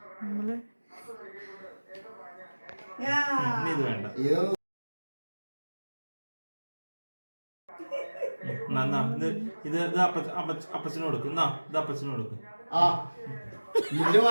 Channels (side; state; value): both; inverted; correlation -1.00